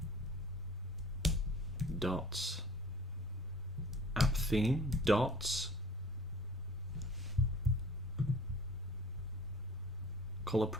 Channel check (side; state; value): both; normal; correlation 0.49